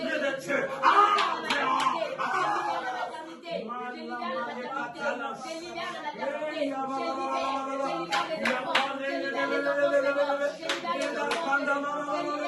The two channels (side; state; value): both; identical; correlation 1.00